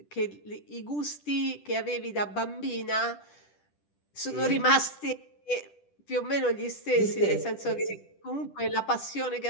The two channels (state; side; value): late; right; 10 ms